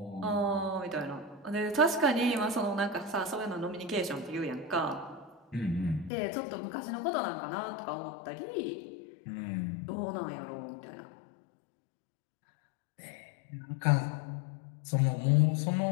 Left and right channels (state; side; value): drops out; right; at 6.1 s